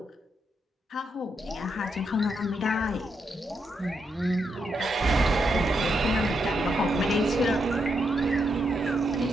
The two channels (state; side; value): normal; both; correlation 0.81